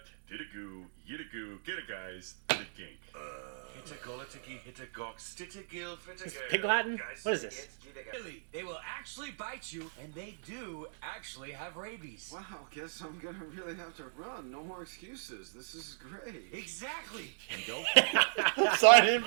did a goo, yit a goo, get a guys, did a gink. Hit a golitiki, hit a gawk, stit a gill, fit a Is this girl. pig Latin? Guys, What is this? Really, they will actually bite you, and they do actually have rabies. Wow, guess I'm gonna really have to run. No more excuses. This is great. Exactly. And don't. Sign in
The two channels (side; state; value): left; silent; digital silence